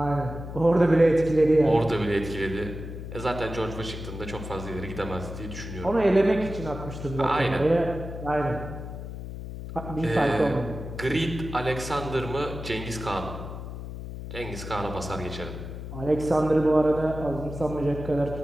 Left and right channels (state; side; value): noise; left; hum, 9 dB below the sound